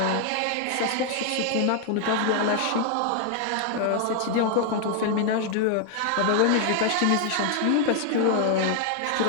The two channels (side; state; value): both; different; correlation 0.00